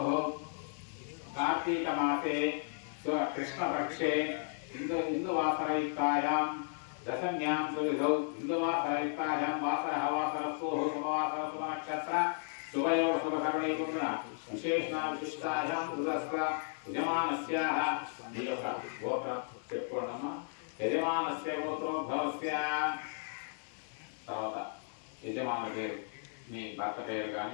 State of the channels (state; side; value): silent; right; digital silence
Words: కార్తీక మాసే కృష్ణపక్షే ఇందువాసరయుక్తాయాం దశమ్యాం సువిధౌ ఇందువాసరయుక్తాయాం వాసరః వాసరస్సోః శుభవాసర శుభనక్షత్ర శుభయోగ శుభకరణీకున్న విశేషణ విశిష్టాయాం దురస్ర యజమానస్యాః ఈ యొక్క గోత్రం చెప్పుకోండమ్మా. యజమానస్య గోత్రోద్భవస్య. తర్వాత యజమాన పేరు, మీ భర్త పేరు